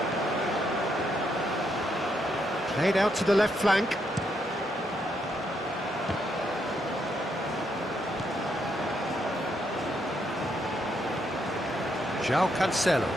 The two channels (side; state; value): both; normal; correlation 0.77